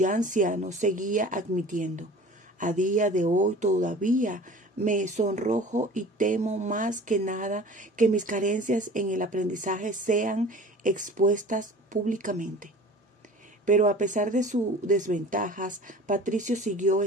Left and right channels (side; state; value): both; normal; correlation 0.42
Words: anciano seguía admitiendo: a día de hoy todavía me sonrojo y temo más que nada que mis carencias en el aprendizaje sean expuestas públicamente. Pero a pesar de sus desventajas, Patricio siguió